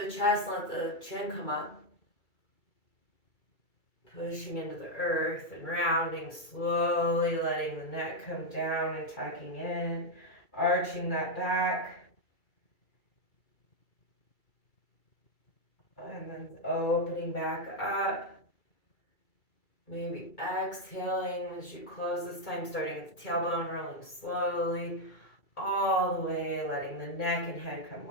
the chest, let the chin come up. Pushing into the earth and rounding slowly, letting the neck come down and tucking in, arching that back. And then opening back up. Maybe exhaling as you close this time, starting at the tailbone, rolling slowly all the way, letting the neck and head come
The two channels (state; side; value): late; right; 2.3 ms